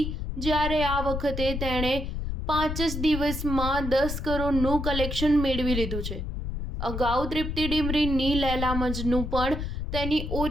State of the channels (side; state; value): left; noise; rumble, 4 dB below the sound